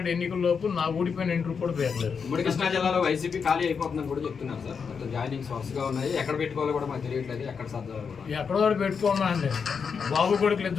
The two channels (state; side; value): quieter; right; 6.0 dB